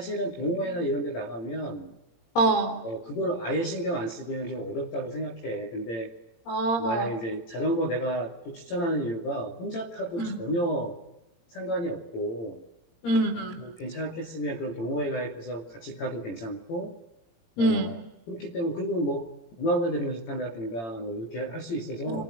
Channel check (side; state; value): right; late; 18 ms